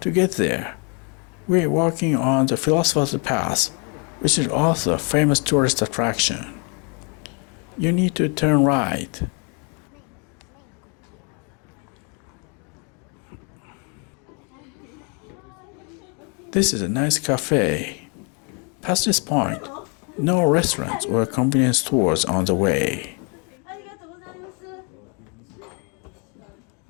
get there, we are walking on the Philosopher's Path, which is also a famous tourist attraction. You need to turn right. This is a nice cafe. Past this point, no restaurants or convenience stores on the way.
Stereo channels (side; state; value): right; quieter; 35.9 dB